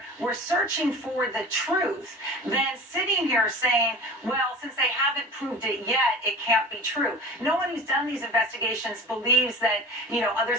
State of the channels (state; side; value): normal; both; correlation 0.37